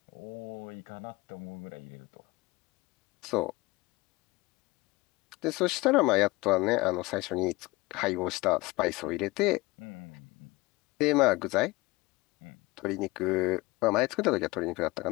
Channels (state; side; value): quieter; right; 22.1 dB